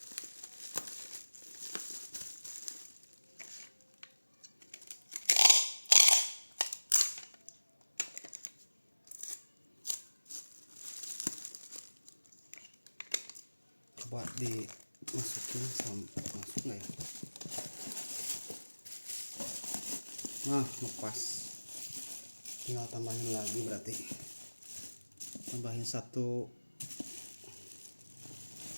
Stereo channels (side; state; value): both; inverted; correlation -1.00